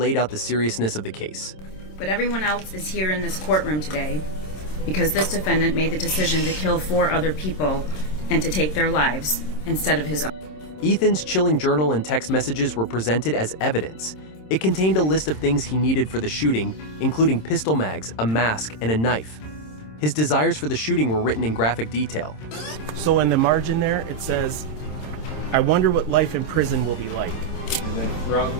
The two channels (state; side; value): late; right; 26 ms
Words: out the seriousness of the case. But everyone else is here in this courtroom today because this defendant made the decision to kill 4 other people and to take their lives instead of his own. Ethan's chilling journal and text messages were presented as evidence. It contained a list of things he needed for the shooting, including pistol mags, a mask, and a knife. His desires for the shooting were written in graphic detail. So in the margin there, it says, "I wonder what life in prison will be like." And then throughout